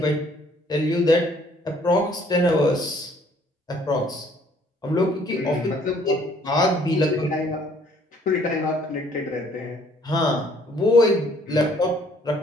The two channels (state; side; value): normal; both; correlation 0.61